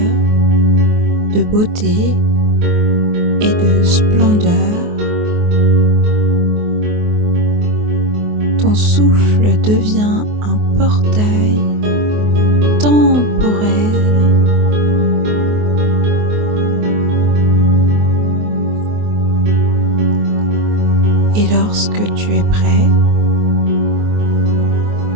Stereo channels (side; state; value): left; late; 24 ms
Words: de beauté et de splendeur. Ton souffle devient un portail temporel. Et lorsque tu es prêt,